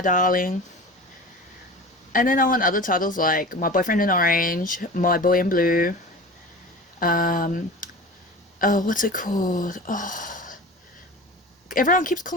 Darling. And then I want other titles like My Boyfriend in Orange, My Boy in Blue, oh, what's it called? Oh, everyone keeps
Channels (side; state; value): both; normal; correlation 0.35